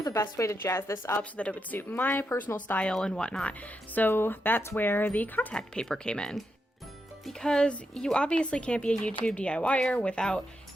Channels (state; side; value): normal; both; correlation 0.84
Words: the best way to jazz this up so that it would suit my personal style and whatnot. So that's where the contact paper came in. because you obviously can't be a YouTube DIYer without